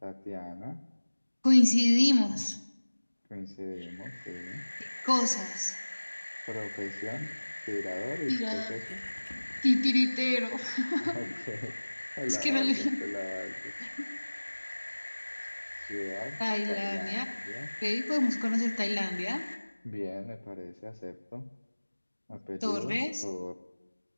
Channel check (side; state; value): both; inverted; correlation -1.00